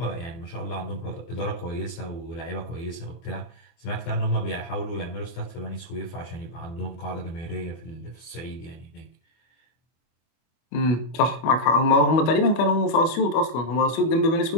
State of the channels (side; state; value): right; late; 24 ms